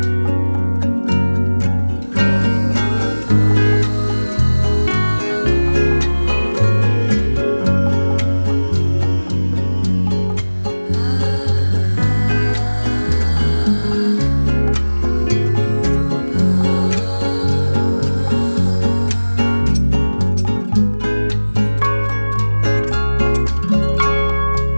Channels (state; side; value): inverted; both; correlation -1.00